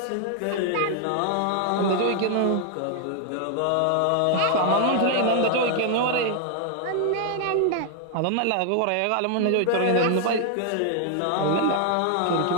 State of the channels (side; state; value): both; different; correlation 0.00